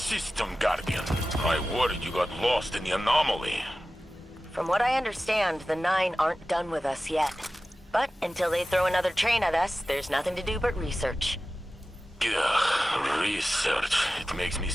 system, Guardian. I worried you got lost in the anomaly. From what I understand, the Nine aren't done with us yet. But until they throw another train at us, there's nothing to do but research. Ugh, research. It makes me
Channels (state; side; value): normal; both; correlation 0.95